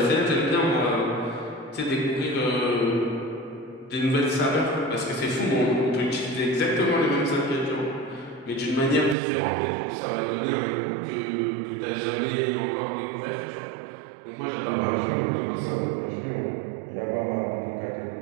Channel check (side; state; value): left; drops out; at 9.2 s